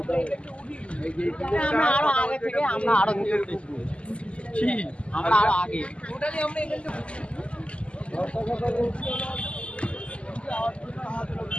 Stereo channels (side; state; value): right; late; 0.056 ms